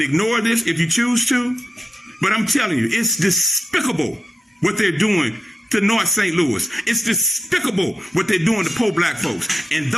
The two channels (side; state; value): both; normal; correlation 0.89